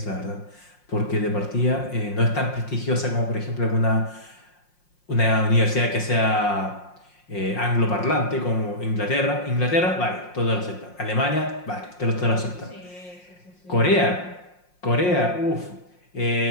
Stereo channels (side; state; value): right; late; 5.6 ms